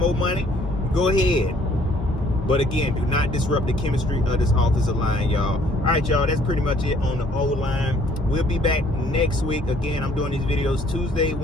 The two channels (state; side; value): normal; both; correlation 0.61